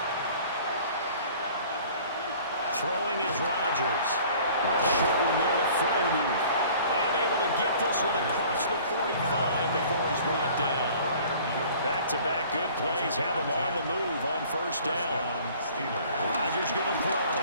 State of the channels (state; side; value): inverted; both; correlation -0.50